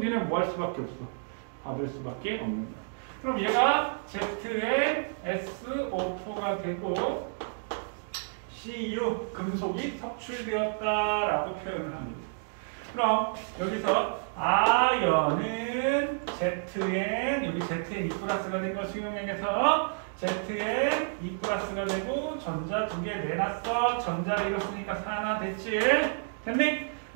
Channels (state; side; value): silent; left; digital silence